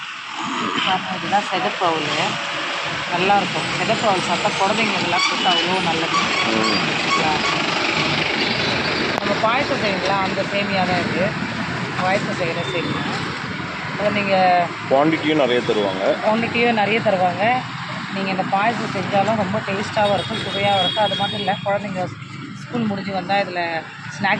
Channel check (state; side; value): identical; both; correlation 1.00